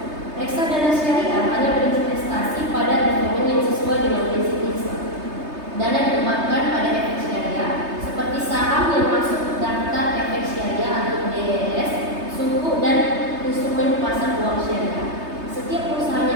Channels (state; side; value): late; left; 3.3 ms